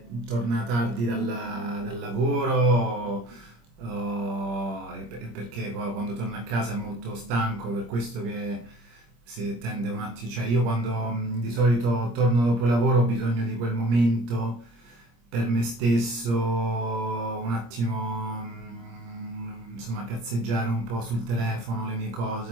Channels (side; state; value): left; late; 25 ms